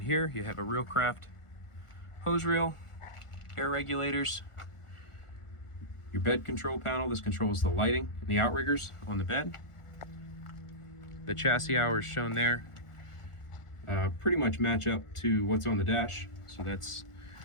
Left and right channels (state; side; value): late; right; 1.4 ms